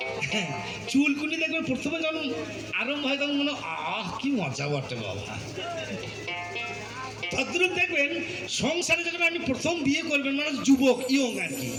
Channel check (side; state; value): both; identical; correlation 1.00